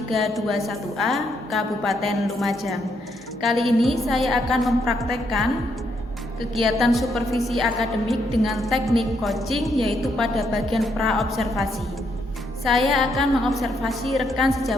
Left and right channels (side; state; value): both; normal; correlation 0.76